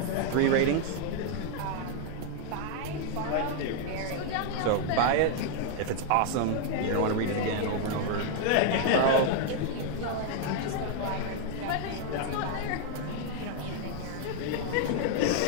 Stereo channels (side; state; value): both; different; correlation 0.00